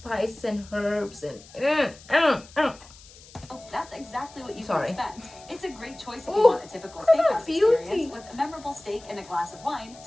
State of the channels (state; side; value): noise; left; hiss, 22 dB below the sound